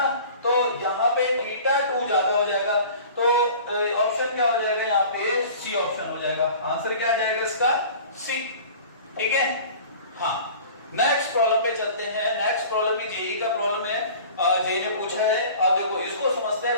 तो यहाँ पे θ2 ज्यादा हो जाएगा, तो ऑप्शन क्या हो जाएगा यहाँ पे, सी ऑप्शन हो जाएगा। आंसर क्या आ जाएगा इसका, सी, ठीक है। हाँ, नेक्स्ट प्रॉब्लम पे चलते हैं। नेक्स्ट प्रॉब्लम भी जेई का प्रॉब्लम है, जेई ने पूछा है। अब देखो इसको समझते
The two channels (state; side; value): inverted; both; correlation -0.43